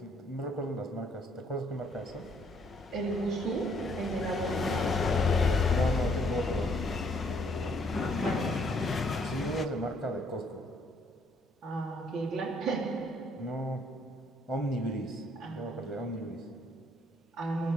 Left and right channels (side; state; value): both; normal; correlation 0.66